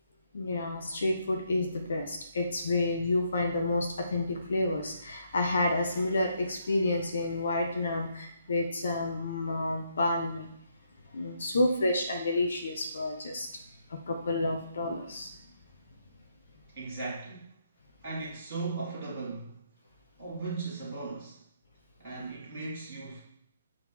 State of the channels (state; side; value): inverted; both; correlation -0.75